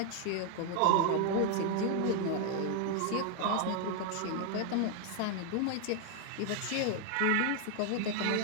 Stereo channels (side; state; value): both; different; correlation 0.00